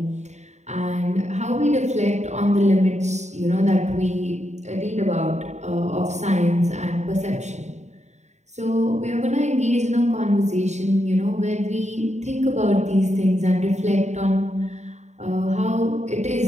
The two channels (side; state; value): left; late; 0.33 ms